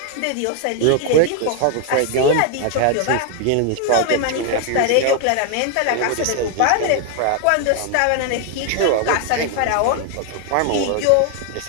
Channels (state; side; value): different; both; correlation 0.00